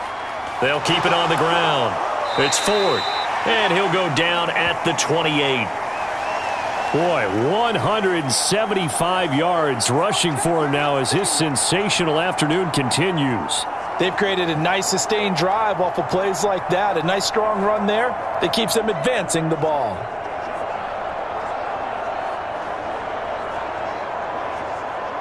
They'll keep it on the ground. It's Ford, and he'll go down at the 28. Boy, 175 yards rushing for him now as his sensational afternoon continues. They've created a nice sustained drive off of plays like that. A nice strong run there that keeps them advancing the ball.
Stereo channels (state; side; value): identical; both; correlation 1.00